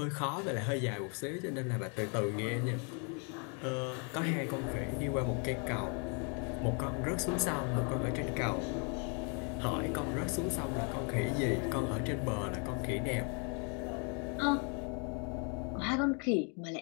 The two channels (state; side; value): quieter; right; 37.4 dB